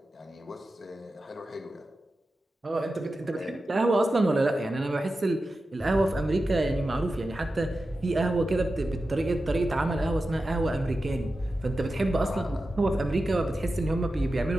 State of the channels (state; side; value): normal; both; correlation 0.92